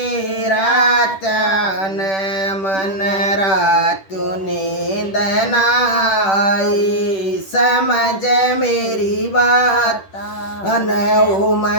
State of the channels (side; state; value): right; late; 10 ms